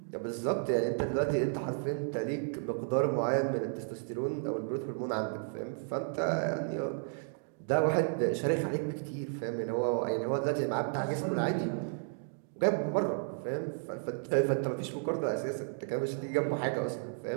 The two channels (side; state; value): left; silent; digital silence